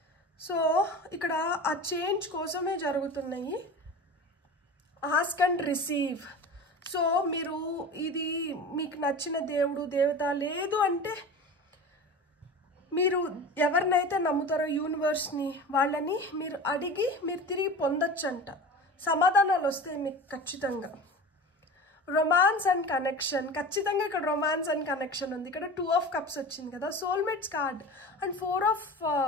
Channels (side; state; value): both; normal; correlation 0.33